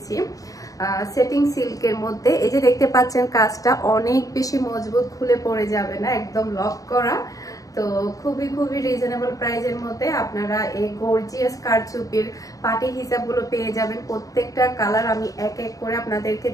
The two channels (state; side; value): late; right; 0.17 ms